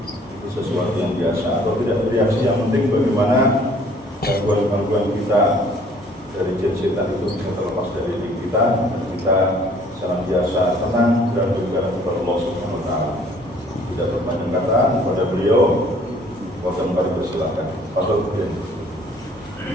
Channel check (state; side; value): normal; both; correlation 0.57